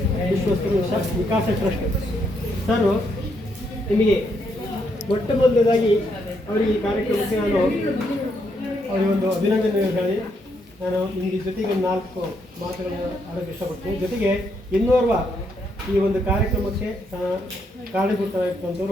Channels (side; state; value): both; normal; correlation 0.76